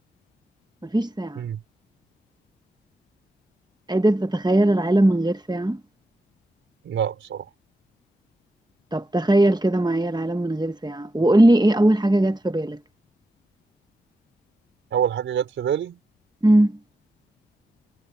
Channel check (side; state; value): both; normal; correlation 0.87